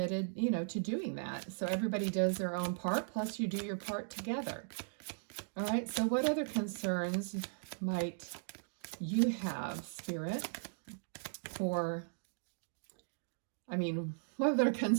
to doing that. So everybody does their own part, plus you do your part together. All right, so what other concerns might you have, Spirit, what other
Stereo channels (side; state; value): left; silent; digital silence